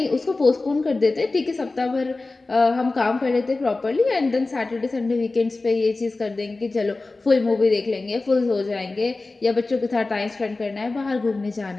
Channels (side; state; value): right; quieter; 3.4 dB